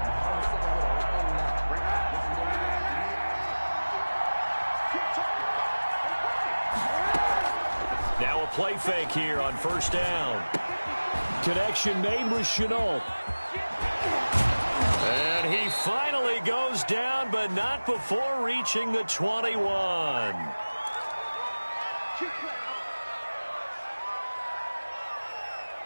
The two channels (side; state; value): both; inverted; correlation -1.00